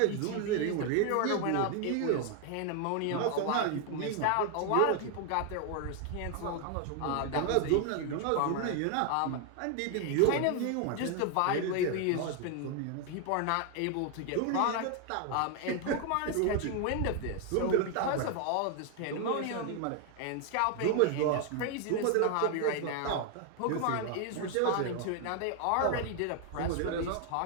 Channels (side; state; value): both; different; correlation 0.00